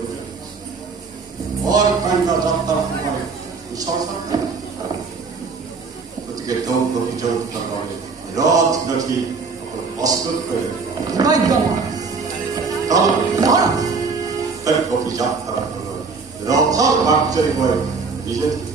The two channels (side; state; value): left; quieter; 4.6 dB